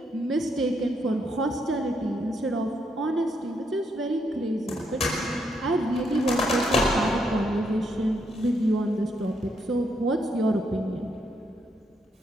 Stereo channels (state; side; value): normal; both; correlation 0.76